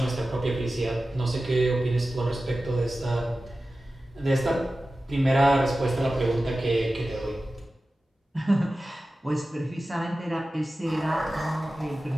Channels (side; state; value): both; normal; correlation 0.95